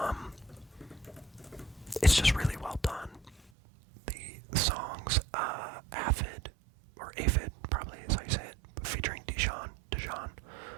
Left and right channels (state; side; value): drops out; left; at 3.5 s